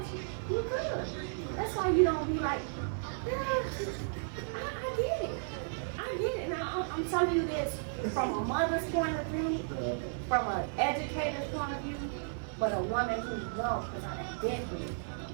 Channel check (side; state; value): left; silent; 55 dB below the other